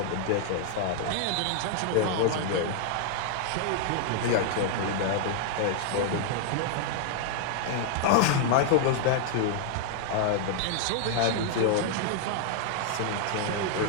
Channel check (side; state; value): both; different; correlation 0.00